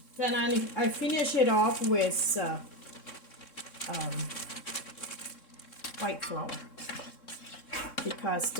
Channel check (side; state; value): right; late; 3.6 ms